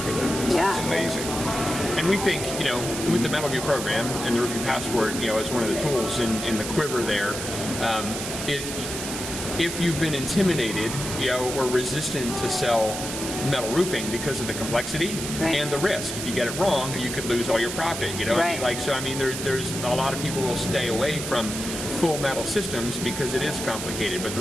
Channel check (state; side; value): noise; right; hiss, 6 dB below the sound